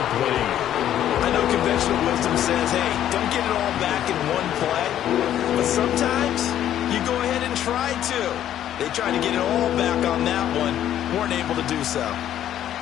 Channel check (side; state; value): right; quieter; 11.3 dB